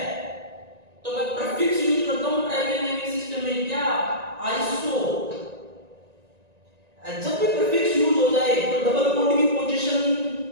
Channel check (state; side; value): late; left; 1.9 ms